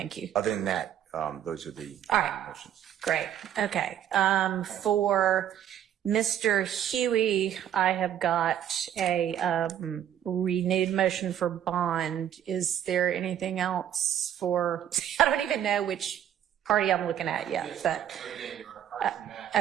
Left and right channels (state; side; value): quieter; left; 10.4 dB